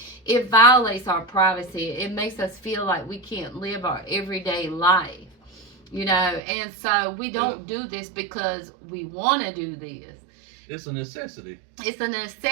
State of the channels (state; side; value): drops out; left; at 6.4 s